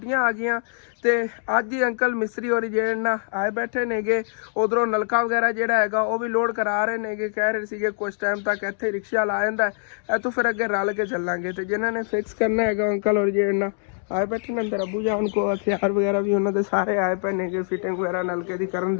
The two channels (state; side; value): silent; right; digital silence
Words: ਆ ਗਈਆਂ ਤੇ ਅੱਜ ਹੀ ਅੰਕਲ ਮਿਸਤਰੀ ਹੋਰੀ ਜਿਹੜੇ ਨਾ ਆਏ ਬੈਠੇ ਨੇਗੇ। ਉਧਰੋਂ ਨਲਕਾ ਵਗੈਰਾ ਜਿਹੜਾ ਹੈਗਾ ਉਹ ਵੀ ਲੋਡ ਕਰਾ ਰਹੇ ਨੇਗੇ। ਕਹਿ ਰਹੇ ਸੀਗੇ ਕੁਝ ਟਾਈਮ ਤੱਕ ਇੱਥੇ ਰਿਕਸ਼ਾ ਲਾ ਜਾਂਦਾ, ਇੱਥੋਂ ਫਿਰ ਅੱਗੇ ਰਲ ਕੇ ਚੱਲਾਂਗੇ। ਤੇ ਜਿਨ੍ਹਾਂ ਨੇ ਫਿਕਸ ਕਰਨਾ ਹੈਗਾ ਅੰਕਲ ਹੋਰੀ ਜਿਹੜੇ ਨਾ आए बैठे ने अंदर अबू जान को हथियार वगैरह भी उन्होंने सारे आए पे ने फिटिंग वगैरह नलके की करन